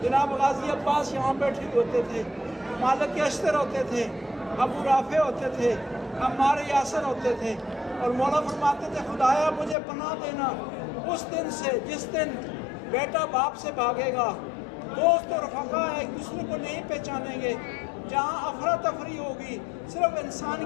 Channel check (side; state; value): right; drops out; at 9.8 s